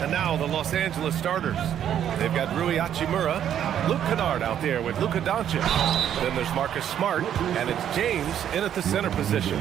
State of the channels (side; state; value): left; quieter; 9.9 dB